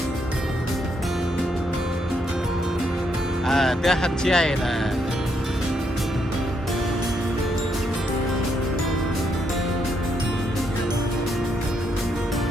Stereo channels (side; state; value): both; normal; correlation 0.76